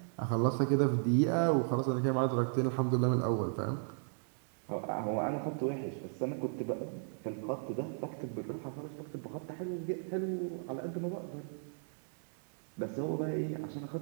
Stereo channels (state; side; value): silent; left; digital silence